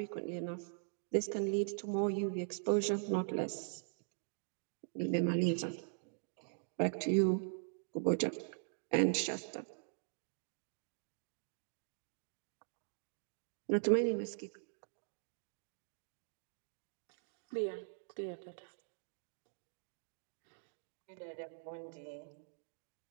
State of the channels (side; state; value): left; silent; digital silence